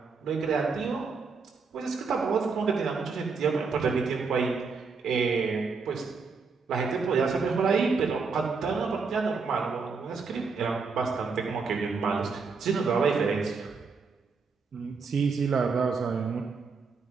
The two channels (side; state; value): left; quieter; 4.9 dB